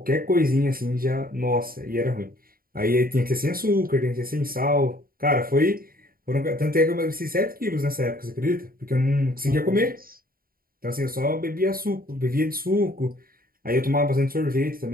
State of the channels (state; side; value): late; left; 0.42 ms